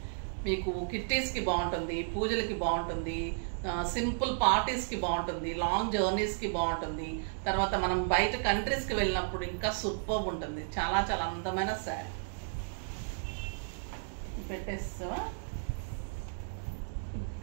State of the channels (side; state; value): left; silent; digital silence